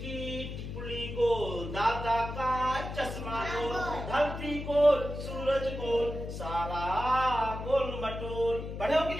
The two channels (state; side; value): noise; left; hum, 7 dB below the sound